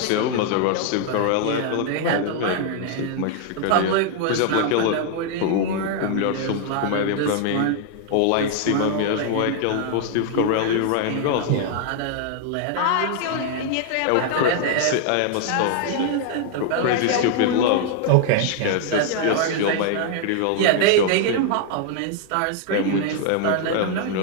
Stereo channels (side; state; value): both; different; correlation 0.00